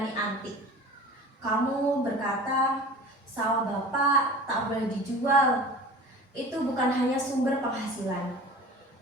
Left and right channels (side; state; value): both; normal; correlation 0.39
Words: antik. Kamu berkata, sawah bapak tak boleh dijual. Itu bukan hanya sumber penghasilan.